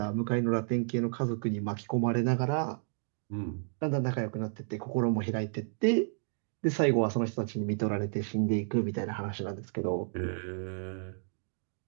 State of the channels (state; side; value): silent; left; digital silence